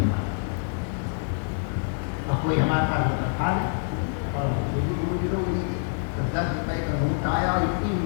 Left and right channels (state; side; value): silent; right; digital silence